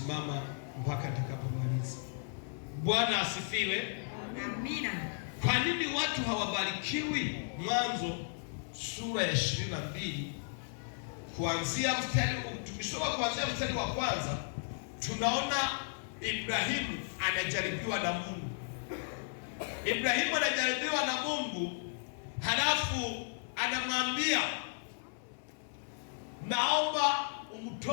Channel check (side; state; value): right; silent; 55 dB below the other